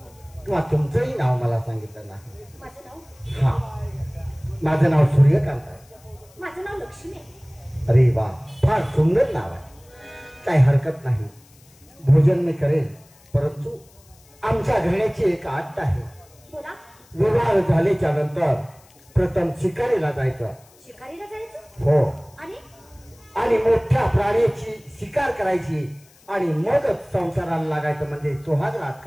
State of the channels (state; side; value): noise; left; hiss, 28 dB below the sound